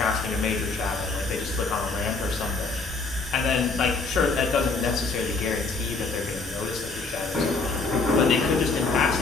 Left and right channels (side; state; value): right; quieter; 4.0 dB